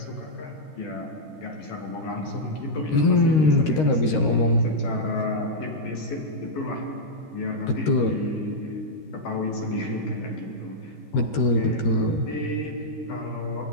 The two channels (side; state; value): right; late; 13 ms